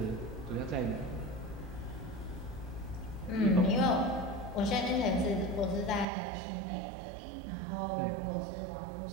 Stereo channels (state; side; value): drops out; left; at 6.1 s